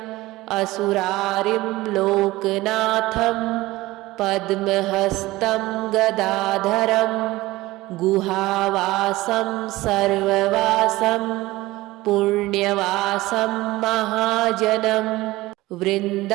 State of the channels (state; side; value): quieter; left; 18.7 dB